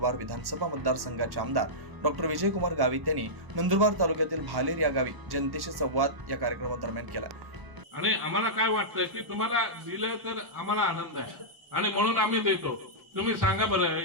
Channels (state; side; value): late; left; 1.1 ms